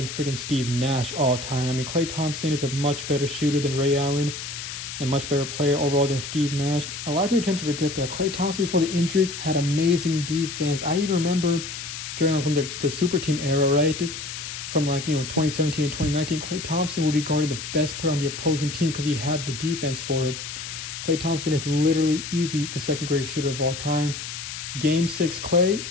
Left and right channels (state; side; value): noise; left; hiss, 8 dB below the sound